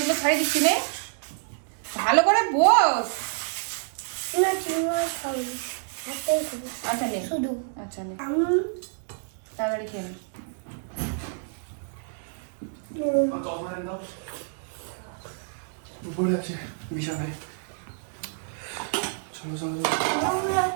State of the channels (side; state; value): left; silent; digital silence